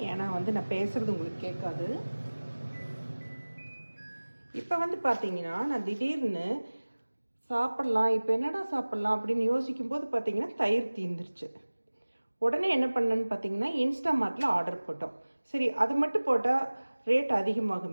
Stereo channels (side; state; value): both; inverted; correlation -1.00